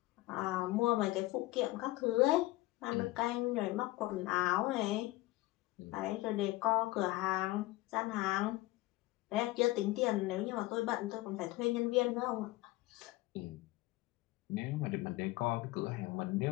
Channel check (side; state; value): right; quieter; 18.8 dB